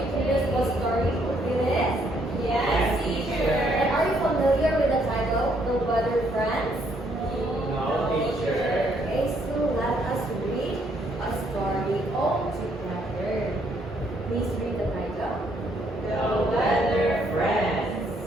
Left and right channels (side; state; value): both; normal; correlation 0.70